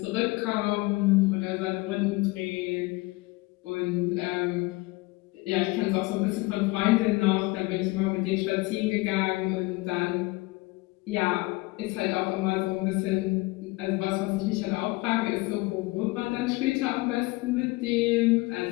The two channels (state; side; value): quieter; right; 22.8 dB